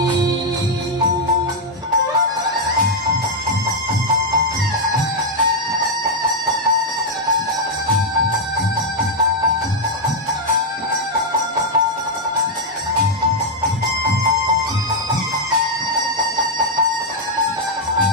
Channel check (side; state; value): both; normal; correlation 0.00